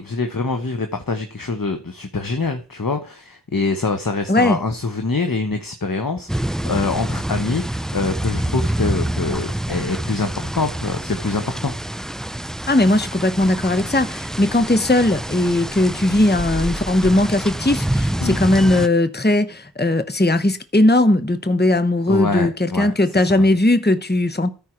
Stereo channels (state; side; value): normal; both; correlation 0.67